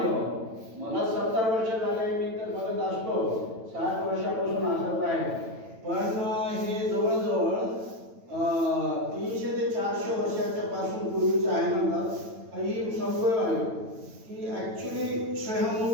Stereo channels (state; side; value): late; left; 9.0 ms